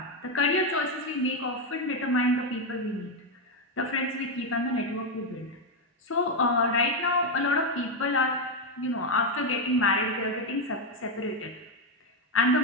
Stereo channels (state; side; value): normal; both; correlation 0.06